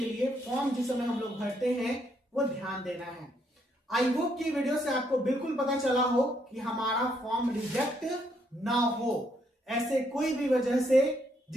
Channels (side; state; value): both; normal; correlation 0.73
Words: लिए फॉर्म जिस समय हम लोग भरते हैं वो ध्यान देना है। आई होप कि वीडियो से आपको बिल्कुल पता चला हो कि हमारा फॉर्म रिजेक्ट ना हो ऐसे कोई भी वजह से